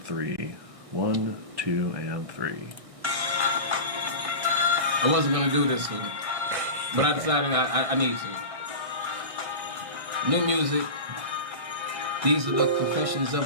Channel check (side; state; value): left; late; 1.6 ms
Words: 1, 2, and 3. I wasn't gonna do this one, but I decided I need to. New music. These are the confessions